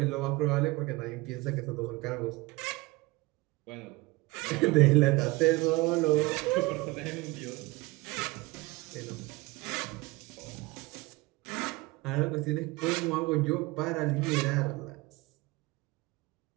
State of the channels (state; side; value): quieter; left; 22.3 dB